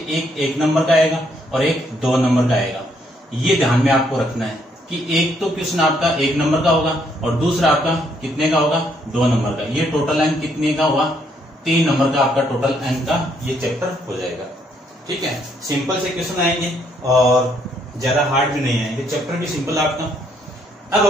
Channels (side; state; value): both; normal; correlation 0.71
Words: एक 1 नंबर का आएगा और एक 2 नंबर का आएगा। ये ध्यान में आपको रखना है कि एक तो क्वेश्चन आपका 1 नंबर का होगा और दूसरा आपका कितने का होगा, 2 नंबर का। ये टोटल अंक कितने का हुआ, 3 नंबर का आपका टोटल अंक का ये चैप्टर हो जाएगा। ठीक है, सिंपल से क्वेश्चन आएंगे और ज्यादा हार्ड भी नहीं आएंगे, चैप्टर भी सिंपल आपका। अब